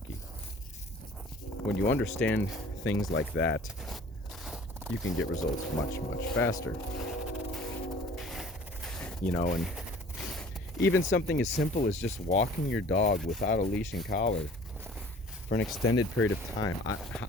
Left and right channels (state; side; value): normal; both; correlation 0.49